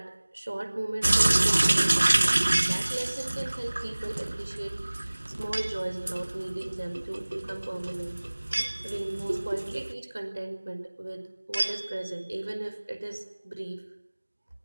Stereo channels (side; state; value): both; inverted; correlation -1.00